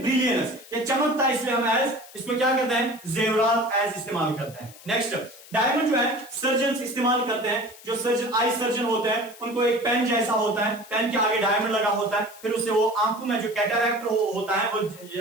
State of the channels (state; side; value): noise; left; hiss, 20 dB below the sound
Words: ये चमकता है, इसलिए हम एज इसको क्या करते हैं? जेवरात एज इस्तेमाल करते हैं। नेक्स्ट डायमंड जो है सर्जन इस्तेमाल करते हैं, जो सर्जन, आई सर्जन होते हैं, उनको एक पेन जैसा होता है, पेन के आगे डायमंड लगा होता है, फिर उससे वो आंखों में जो कैटरैक्ट होता है, वो